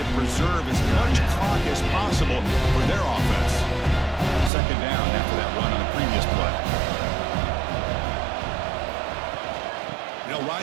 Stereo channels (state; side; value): drops out; left; at 4.5 s